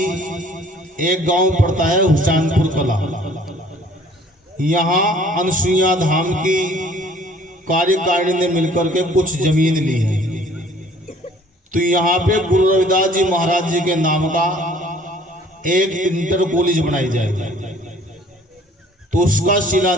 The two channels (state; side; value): normal; both; correlation 0.55